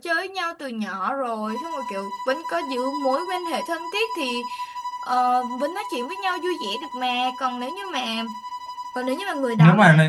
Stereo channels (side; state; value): both; identical; correlation 1.00